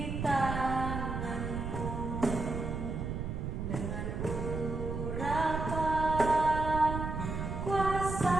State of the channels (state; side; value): noise; right; rumble, 4 dB below the sound